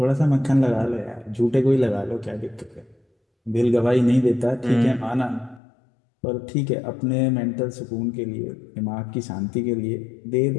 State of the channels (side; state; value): right; drops out; at 5.6 s